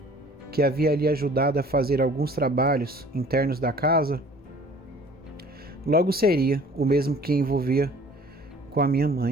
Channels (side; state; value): both; normal; correlation 0.51